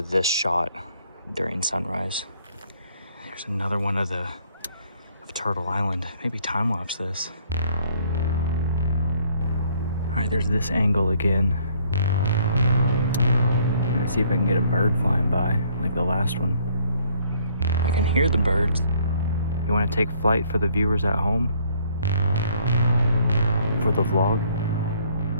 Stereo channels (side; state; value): both; inverted; correlation -0.63